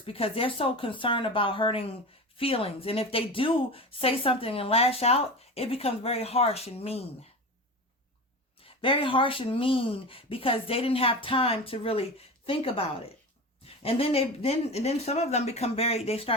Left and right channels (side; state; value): both; normal; correlation 0.28